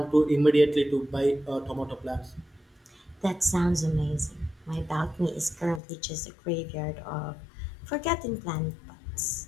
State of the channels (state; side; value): drops out; right; at 5.8 s